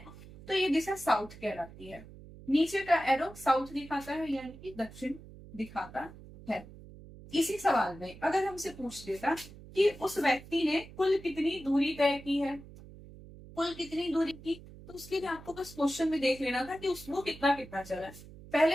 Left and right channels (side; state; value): right; noise; hum, 18 dB below the sound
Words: तो ये दिशा साउथ कहलाती है। नीचे का एरो साउथ दिखाता है, यानी कि दक्षिण दिखाता है। इसी सवाल में अगर हमसे पूछ देता कि उस व्यक्ति ने कुल कितनी दूरी तय की है, कुल कितनी दूरी की, तो उसके लिए आपको बस क्वेश्चन में देख लेना था कि वो कितना कितना चला है।